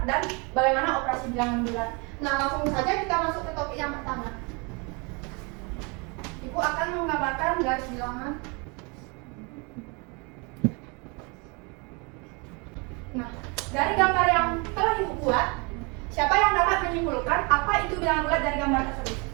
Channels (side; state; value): left; quieter; 30.5 dB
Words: dan bagaimana operasi bilangan bulat. Nah, langsung saja kita masuk ke topik yang pertama. Ibu akan menggambarkan garis bilangan. Nah, dari gambar yang telah Ibu buat, siapa yang dapat menyimpulkan apa itu bilangan bulat dari gambar tersebut?